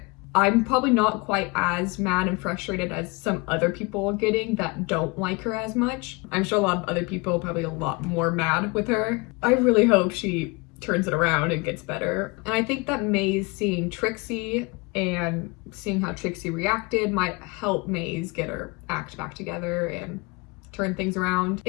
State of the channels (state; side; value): quieter; right; 27.0 dB